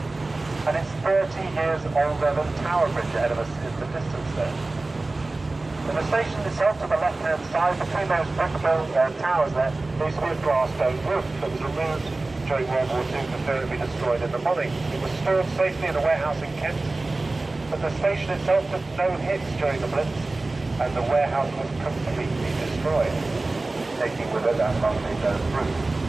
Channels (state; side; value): quieter; left; 3.2 dB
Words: and it's 30 years older than Tower Bridge ahead of us in the distance there. And the station itself to the left-hand side, between those brick-built towers there used to be a glass dome roof that was removed during World War II for fear it would be destroyed in the bombing. It was stored safely in a warehouse in Kent, but the station itself took no hits during the Blitz, and the warehouse was completely destroyed, taking with it that lovely dome roof.